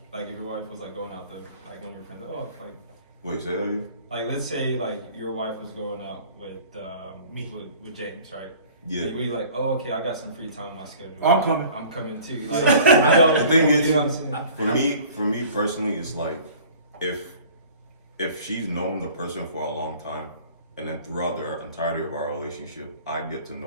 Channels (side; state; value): both; inverted; correlation -0.48